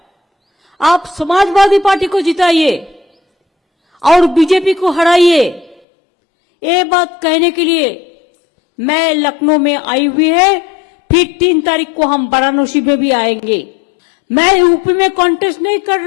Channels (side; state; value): right; drops out; at 5.8 s